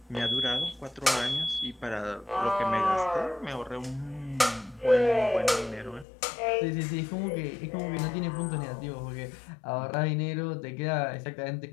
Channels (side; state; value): right; drops out; at 6.1 s